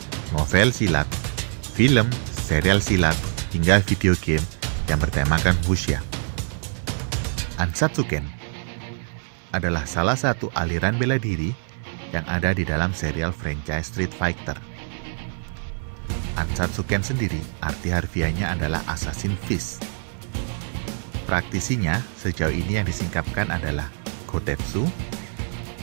novel silat, film, serial silat, hingga video game yang bertemakan Wuxia. Ansatsuken adalah salah satu aliran bela diri yang ada di dalam serial franchise Street Fighter. Ansatsuken sendiri arti harfiahnya adalah Assassin Fist. Praktisinya sejauh ini yang disingkapkan adalah Gotetsu,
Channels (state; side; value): silent; left; 62 dB below the other